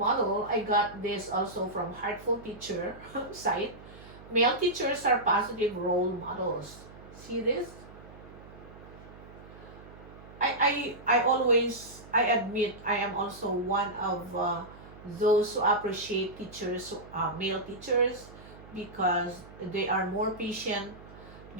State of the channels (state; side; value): noise; right; hum, 18 dB below the sound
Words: I got this also from Heartful Teacher site. Male teachers are positive role models. See this? I always, I admit, I am also one of those who appreciate teachers, male teachers, because they are more patient.